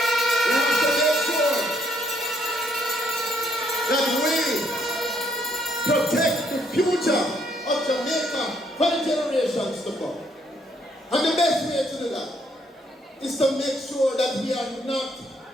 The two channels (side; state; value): both; normal; correlation 0.70